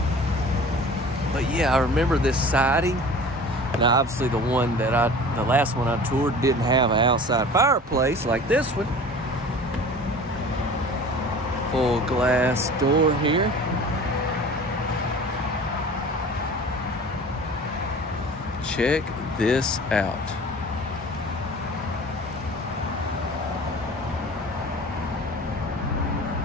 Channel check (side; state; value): both; normal; correlation 0.42